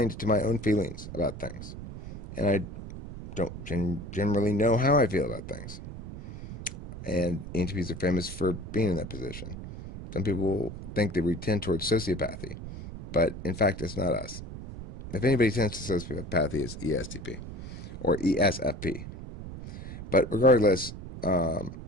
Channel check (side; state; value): right; noise; rumble, 10 dB below the sound